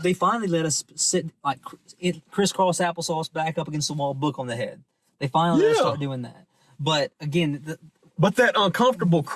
they finally let us sit like crisscross applesauce back up against the wall, book on the head. They finally let us start doing that. But again, but that uncomfortable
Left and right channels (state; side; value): identical; both; correlation 1.00